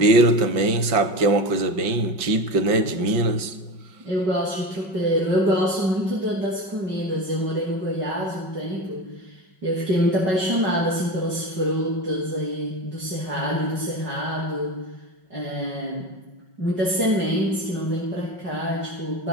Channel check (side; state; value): left; late; 5.4 ms